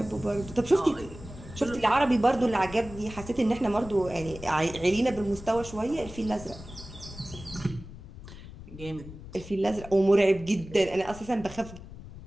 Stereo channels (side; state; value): left; noise; rumble, 15 dB below the sound